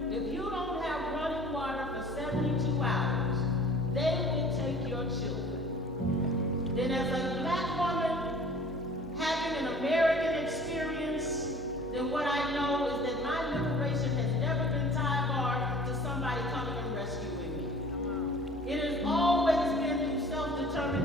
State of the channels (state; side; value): normal; both; correlation 0.48